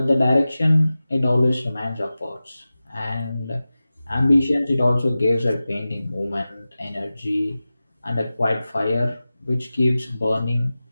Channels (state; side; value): inverted; both; correlation -0.96